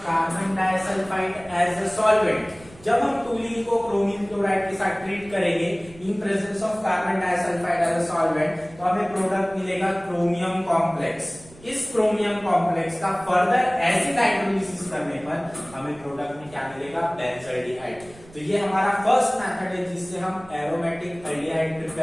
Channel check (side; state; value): right; noise; rumble, 22 dB below the sound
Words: carbon disulphide as a solvent. जब हम टूलीन को क्रोमीन क्लोराइड के साथ ट्रीट करेंगे in presence of carbon disulphide as a solvent तो हमें प्रोडक्ट मिलेगा क्रोमियम कॉम्प्लेक्स। इस क्रोमियम कॉम्प्लेक्स का फर्दर एसिड हाइड्रोलिसिस करने पर हमें प्रोडक्ट में क्या मिलेगा? बेंजाल्डिहाइड। तो ये हमारा फर्स्ट मेथड है जिससे हम एरोमेटिक अल्डिहाइड